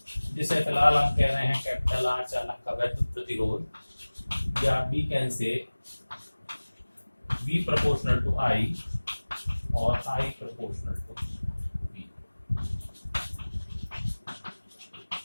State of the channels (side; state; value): both; inverted; correlation -1.00